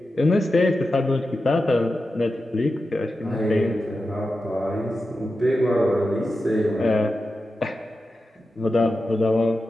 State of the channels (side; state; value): both; normal; correlation 0.91